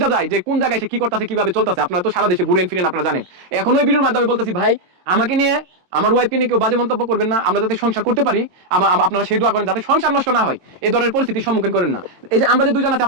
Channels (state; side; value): late; left; 22 ms